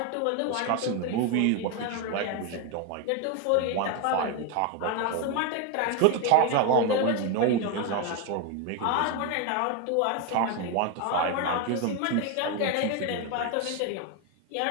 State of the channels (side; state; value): both; different; correlation 0.02